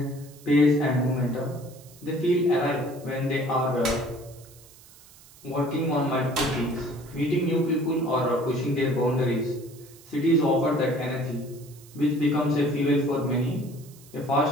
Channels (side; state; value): right; noise; hiss, 23 dB below the sound